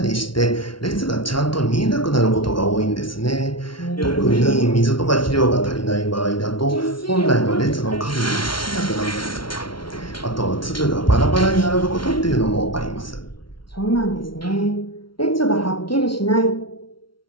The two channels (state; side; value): late; right; 0.74 ms